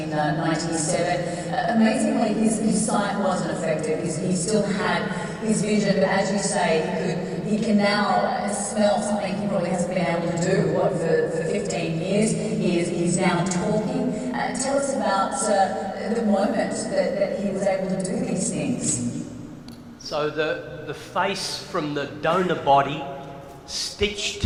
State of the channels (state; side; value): identical; both; correlation 1.00